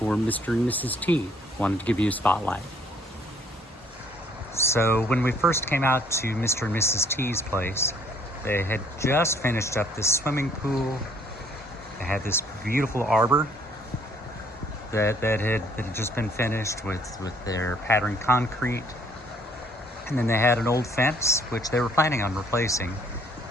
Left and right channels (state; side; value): normal; both; correlation 0.62